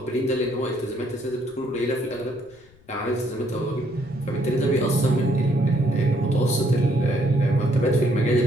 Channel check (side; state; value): left; noise; rumble, 27 dB below the sound